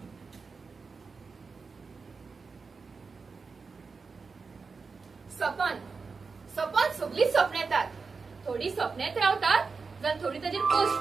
सपन सगळी स्वप्न येतात थोडी स्वप्नेत रावतात जाल्यार थोडी ताजेर पोस्ट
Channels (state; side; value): quieter; left; 4.7 dB